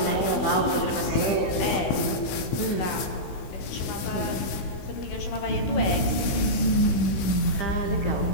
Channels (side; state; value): right; late; 16 ms